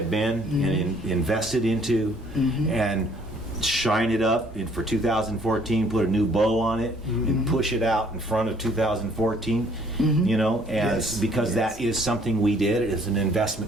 been and invested into, and shine it up for 2014, put a new bow on it, and push it out in front of 2014, because that is something we did. It is an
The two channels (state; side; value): normal; both; correlation 0.61